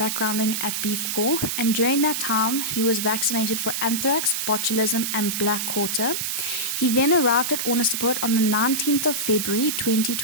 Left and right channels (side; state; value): right; noise; hiss, 1 dB below the sound